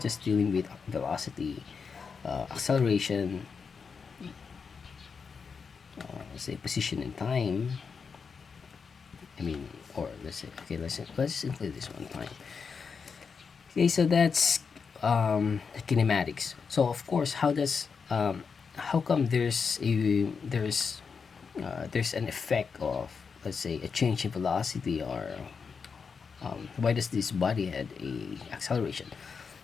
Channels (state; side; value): quieter; right; 5.6 dB